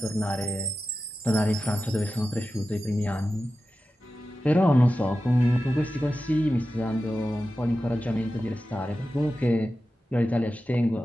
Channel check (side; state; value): both; normal; correlation 0.93